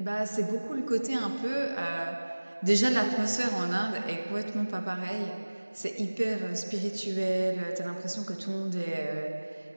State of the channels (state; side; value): inverted; both; correlation -1.00